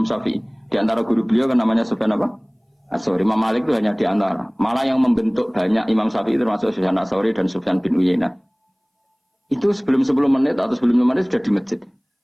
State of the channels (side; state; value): both; identical; correlation 1.00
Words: Syafi'i. Di antara guru beliau kan namanya Sufyan apa? As-Tsauri. Imam Malik itu hanya di antara. Malah yang membentuk banyak Imam Syafi'i termasuk Sufyan As-Tsauri dan Sufyan bin Uyainah. Itu sebelum 10 menit atau sebelum 5 menit sudah di masjid.